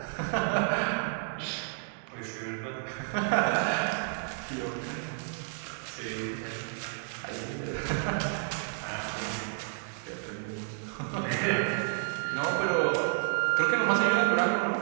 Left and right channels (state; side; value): silent; left; 57 dB below the other